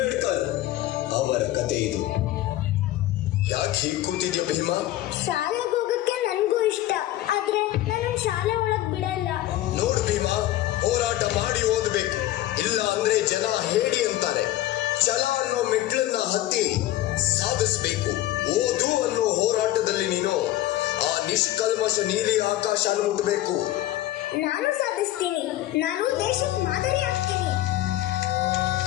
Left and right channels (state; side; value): quieter; right; 14.9 dB